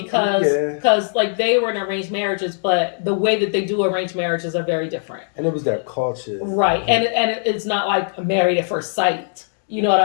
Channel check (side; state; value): right; silent; digital silence